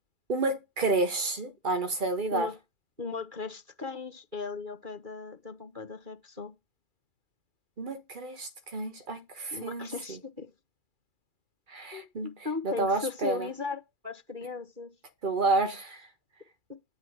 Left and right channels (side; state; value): left; late; 2.3 ms